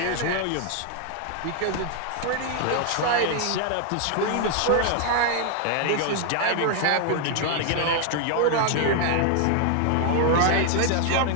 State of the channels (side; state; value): both; different; correlation 0.00